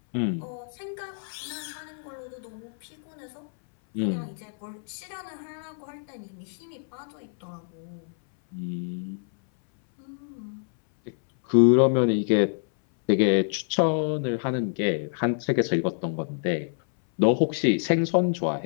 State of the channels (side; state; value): right; silent; 59 dB below the other